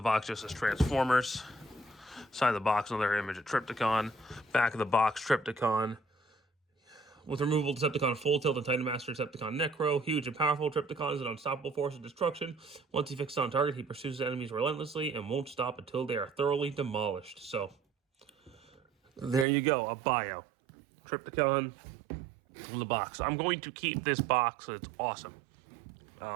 box just says Transformers. Side of the box, another image of Trypticon. Back of the box, Trypticon. With removal, Decepticon Full Tilt and Titan Master Decepticon Necro. Huge and powerful, Trypticon is an unstoppable force of destruction. Once he fixes on target, he pursues his enemies relentlessly and won't stop until they are thoroughly demolished. So, there you go, a bio. Trypticon in the box. I'm going to keep this box, it's awesome.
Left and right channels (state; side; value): drops out; left; at 19.5 s